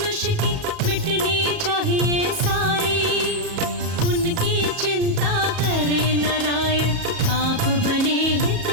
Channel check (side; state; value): left; late; 37 ms